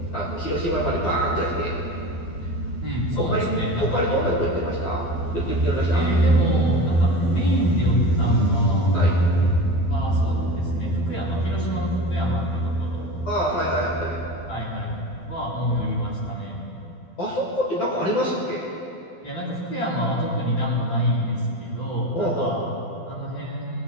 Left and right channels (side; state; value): right; late; 12 ms